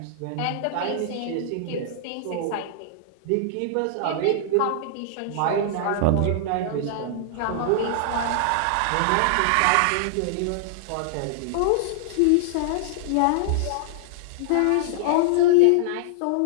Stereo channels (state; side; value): different; both; correlation -0.01